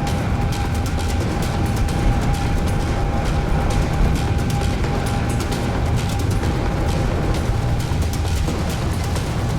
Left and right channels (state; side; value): identical; both; correlation 1.00